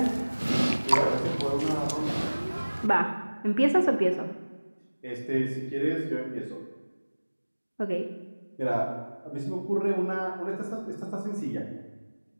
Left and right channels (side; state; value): both; inverted; correlation -1.00